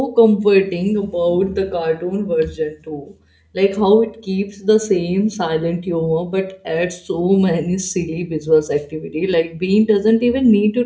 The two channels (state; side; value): identical; both; correlation 1.00